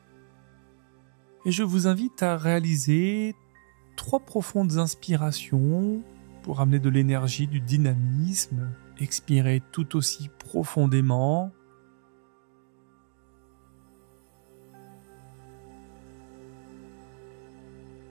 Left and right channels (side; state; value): left; silent; digital silence